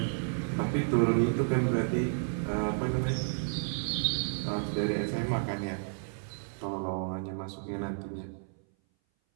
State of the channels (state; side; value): silent; left; 57 dB below the other